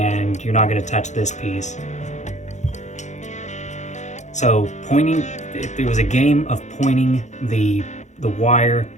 you're not gonna touch this piece. So it was a game of pointing the wire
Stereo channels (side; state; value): right; late; 0.34 ms